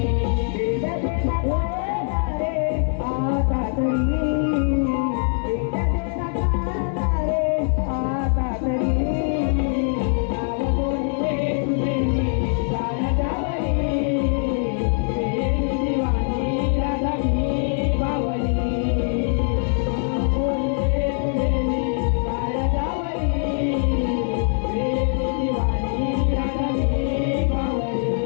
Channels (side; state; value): right; silent; 57 dB below the other